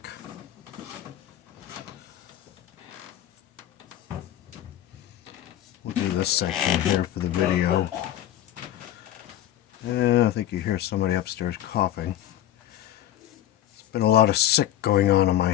We'll do this section here for the video. And I think you hear somebody upstairs coughing. There's been a lot of sick going on in my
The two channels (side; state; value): right; quieter; 12.4 dB